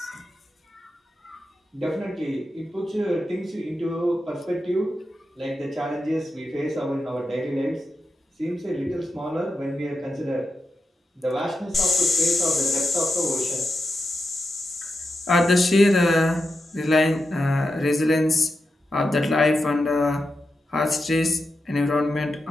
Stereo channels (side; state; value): both; normal; correlation 0.88